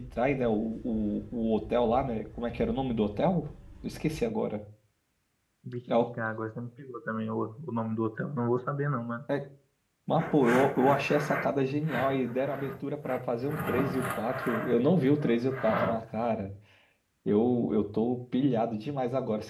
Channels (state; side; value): identical; both; correlation 1.00